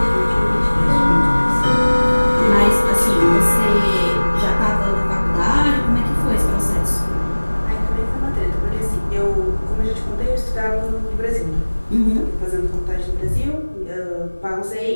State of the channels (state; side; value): inverted; both; correlation -1.00